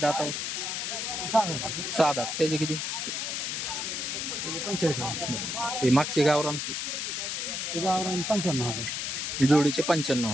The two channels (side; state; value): left; noise; hiss, 2 dB below the sound